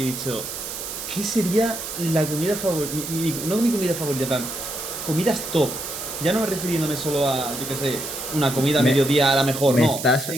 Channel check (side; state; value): right; noise; hiss, 7 dB below the sound